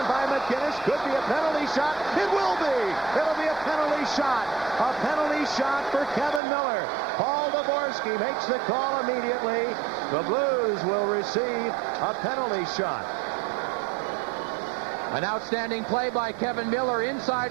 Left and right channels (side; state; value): left; drops out; at 6.4 s